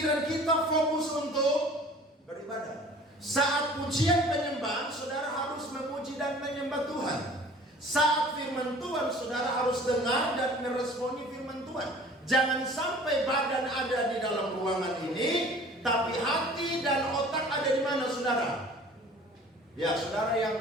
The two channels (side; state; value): both; normal; correlation 0.47